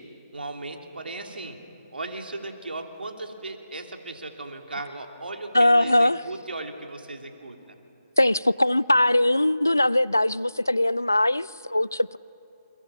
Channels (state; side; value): inverted; both; correlation -0.95